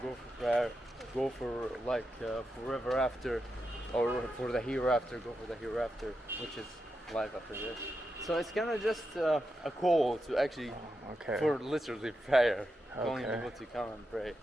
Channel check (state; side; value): normal; both; correlation 0.87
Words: go for like forever after, or for the hereafter, go for the hereafter, which is life after this. So it's kind of just a call to actually, for literally prayer, calling people to come and pray,